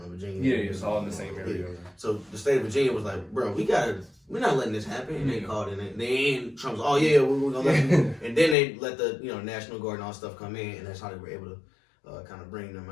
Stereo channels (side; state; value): right; drops out; at 8.6 s